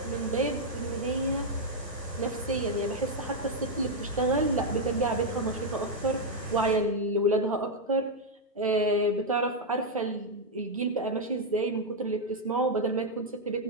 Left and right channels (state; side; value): normal; both; correlation -0.01